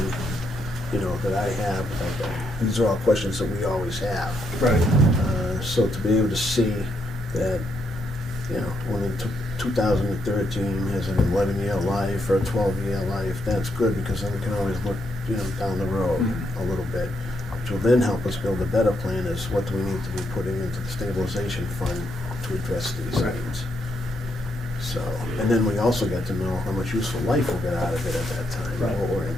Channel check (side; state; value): both; normal; correlation 0.78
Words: that I have. These are all questions that we always have. Right. So to be able to see that, when in 2013 has an 11-year life or a 12-year life, that's good, because then we can always look, down the road a little bit, which will then help us build a better plan is what do we need to be putting into the stabilization fund to address these Right. needs. So, and then we also get to know how much useful life we'll get out of it at that time, Right. what we're